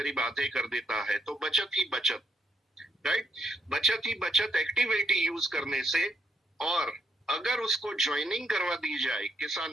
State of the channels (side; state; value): both; normal; correlation 0.77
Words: आधे कर देता है। तो बचत ही बचत, राइट, बचत ही बचत एक्टिव 80 यूज करने से। और अगर उसको ज्वाइनिंग करवा दी जाए